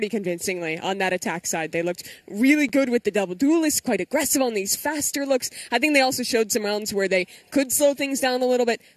convincingly on that attack side. They looked really good with the double duelist, quite aggressive on these faster looks. I think they also showed some rounds where they could slow things down a little bit,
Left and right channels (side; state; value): both; identical; correlation 1.00